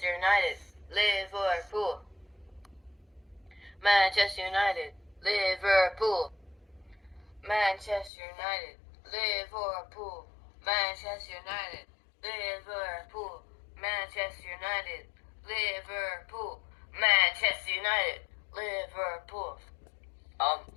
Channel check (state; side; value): drops out; right; at 8.1 s